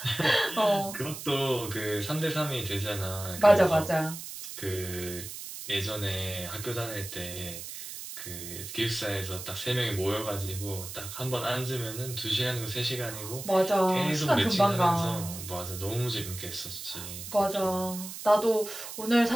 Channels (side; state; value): right; noise; hiss, 10 dB below the sound